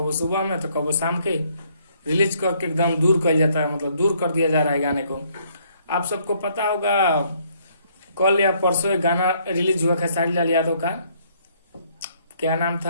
सुबह में तो कबो शाम के रिलीज करके एकदम दूर कर जाता है, मतलब दूर कर दिया जा रहा है गाने को। आप सबको पता होगा कल या परसों एक गाना रिलीज हुआ खेसारी लाल यादव का, क्या नाम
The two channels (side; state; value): both; inverted; correlation -0.66